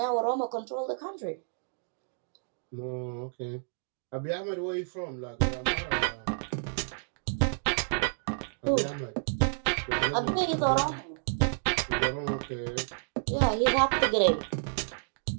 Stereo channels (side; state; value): left; silent; digital silence